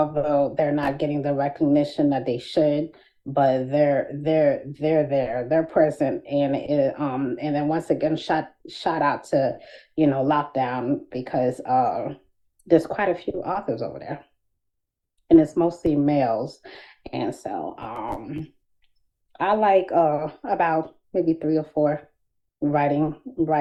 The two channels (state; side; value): identical; both; correlation 1.00